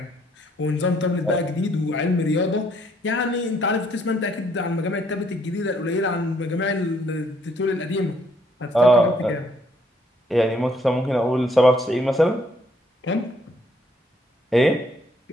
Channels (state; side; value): normal; both; correlation 0.67